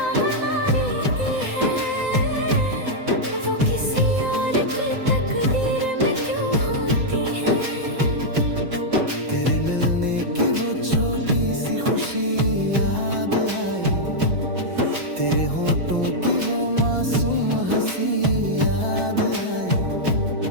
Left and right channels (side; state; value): left; late; 5.8 ms